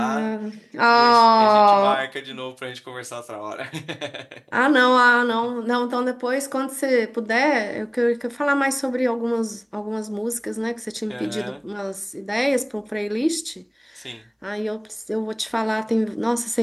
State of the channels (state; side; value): identical; both; correlation 1.00